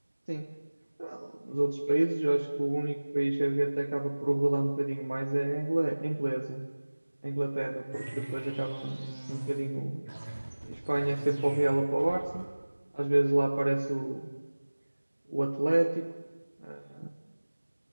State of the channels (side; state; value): both; inverted; correlation -1.00